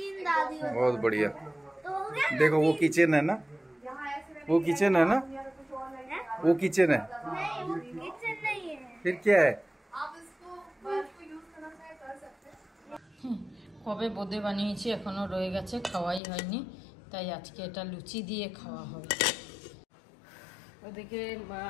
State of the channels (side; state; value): right; drops out; at 16.2 s